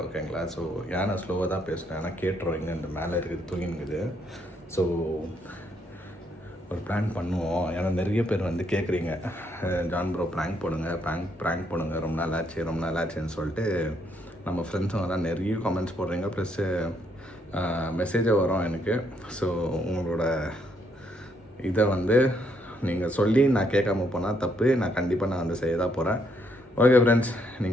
ஓகேங்களா, ஸோ ஏன் நான் ஸ்லோவாக தான் பேசுகிறேன், ஏன்னா கேட்டுருவோம் இங்கே இந்த மேலே இருக்குது தூங்கினுக்குது. ஸோ ஒரு ப்ராங்க் பண்ணுவோம். ஏன்னா நிறைய பேர் வந்து கேட்குறீங்க, ஜான் ப்ரோ ப்ராங்க் போடுங்க, ப்ராங்க் போடுங்க, ரொம்ப நாள் ஆச்சுன்னு சொல்லிட்டு நம்ம ஃப்ரெண்ட்ஸுங்க தான் நிறைய கமெண்ட்ஸ் போடுறீங்க. ப்ளஸ்ஸு மெசேஜை வரும் எனக்கு. ஸோ உங்களோட இதை வந்து நீங்கள் சொல்லி நான் கேட்காம போனால் தப்பு. நான் கண்டிப்பாக நான் வந்து செய்ய தான் போகிறேன். ஓகே ஃப்ரெண்ட்ஸ்,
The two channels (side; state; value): both; normal; correlation 0.73